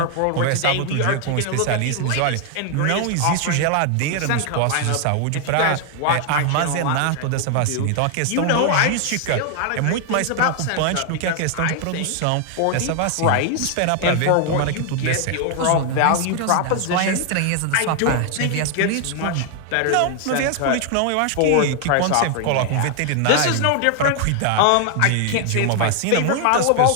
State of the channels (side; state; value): both; different; correlation 0.00